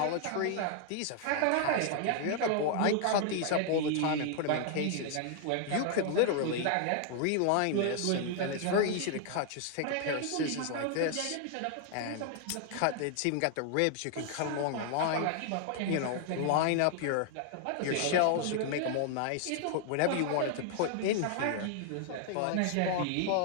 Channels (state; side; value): different; both; correlation 0.00